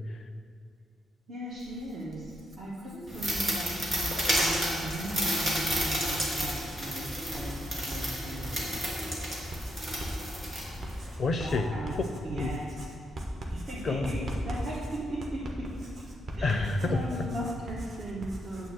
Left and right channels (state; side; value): normal; both; correlation 0.78